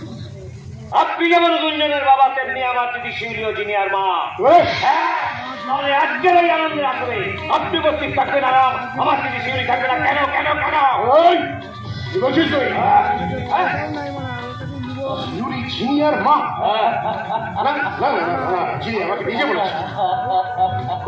আপনি যেমন গুঞ্জনের বাবা, তেমনি আমার দিদি শিউলি ও জিনিয়ার মা। তাহলে আজকের এই আনন্দের আসলে আপনি উপস্থিত থাকবেন আর আমার দিদি শিউলি থাকবে না। কেন কেন কেন? কি বলছিস তুই? শিউলি জিনিয়ার মা? না না না, জিনি আমাকে নিজে বলেছে।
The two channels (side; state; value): both; identical; correlation 1.00